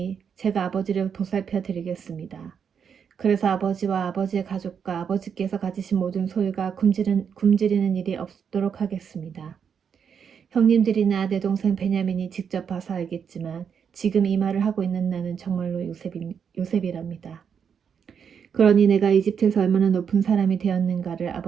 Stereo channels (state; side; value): quieter; left; 7.2 dB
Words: 제가 아버지를 보살펴 드리겠습니다. 그래서 아버지와 아버지의 가족과 아버지께서 가지신 모든 소유가 굶주리는 일이 없도록 하겠습니다. 형님들이나 내 동생 베냐민이 직접 봐서 알겠지만 지금 이 말을 하고 있는 나는 정말로 요셉이랍니다. 그러니 내가 이집트에서 얼마나 높은 사람이 되었는가를